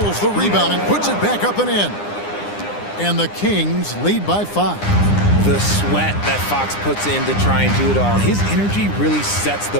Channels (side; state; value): right; late; 9.8 ms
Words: the rebound and puts it back up and in. And the Kings lead by 5. The sweat that Fox puts in to try and do it all. His energy really sets the